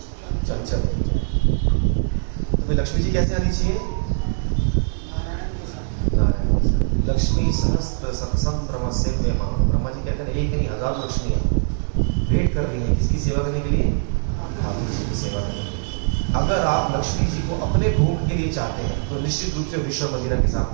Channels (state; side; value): silent; left; 64 dB below the other